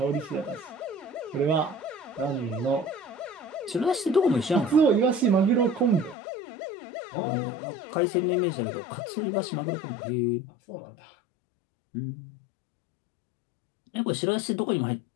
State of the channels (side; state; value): right; drops out; at 6.2 s